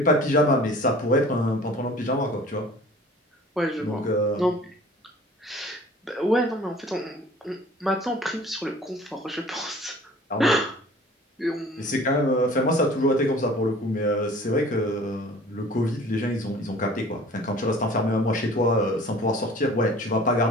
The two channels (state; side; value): normal; both; correlation 0.47